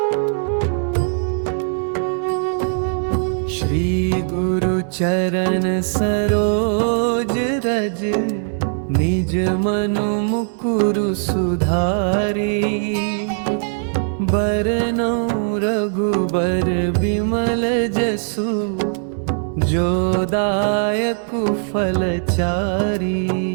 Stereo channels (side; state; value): left; silent; 66 dB below the other